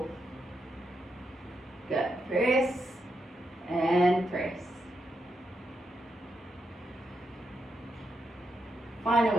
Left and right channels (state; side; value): normal; both; correlation 0.83